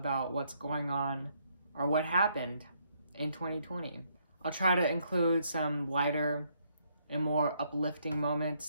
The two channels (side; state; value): both; inverted; correlation -0.72